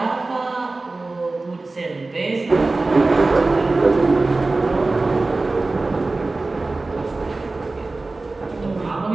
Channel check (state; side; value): quieter; left; 3.3 dB